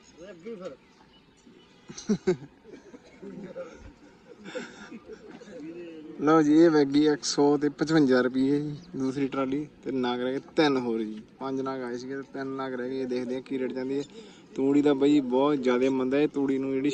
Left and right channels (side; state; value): both; identical; correlation 1.00